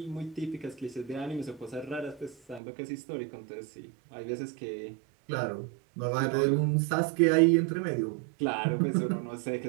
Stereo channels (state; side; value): drops out; left; at 2.6 s